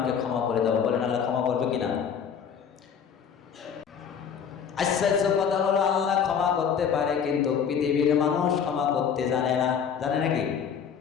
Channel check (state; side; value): quieter; right; 7.4 dB